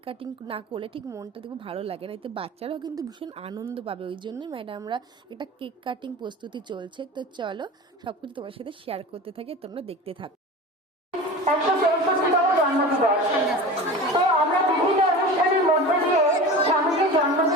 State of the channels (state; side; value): normal; both; correlation 0.33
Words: কাটিং না করলে ঠিক মনটা দেখবো ভালো লাগে না। এতে বাচ্চারাও কিন্তু ভীষণ আনন্দ পাবে, ওই জন্যই ম্যাডামরা একটা কেক কাটিং প্রস্তুতি চলছে। তো চলো সব কিছু তোমার সাথে শেয়ার করতে থাকি, তোমরা দেখতে থাকো। 164তম জন্মদিবস। তো আমরা বিভিন্ন অনুষ্ঠানের মধ্যে দিয়ে স্বামীজির